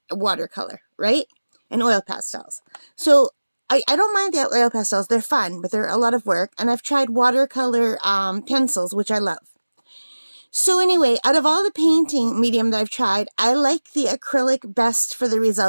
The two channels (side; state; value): both; inverted; correlation -1.00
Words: watercolor, right? And oil pastels. So I don't mind the oil pastels. They're fun, but they're a lot of work. And I've tried watercolor pencils, which I love. So anyway, out of all the painting medium that I've tried, I like the acrylic best for the